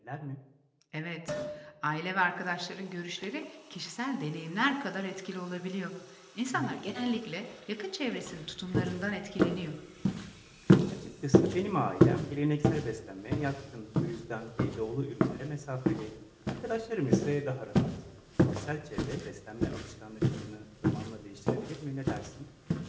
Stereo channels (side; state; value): both; identical; correlation 1.00